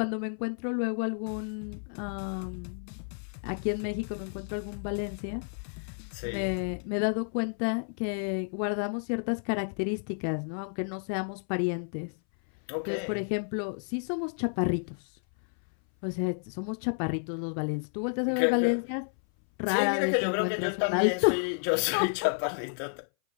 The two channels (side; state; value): right; silent; 57 dB below the other